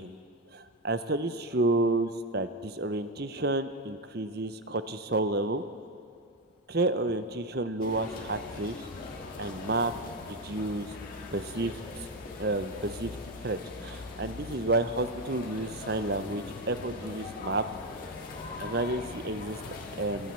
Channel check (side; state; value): both; normal; correlation 0.11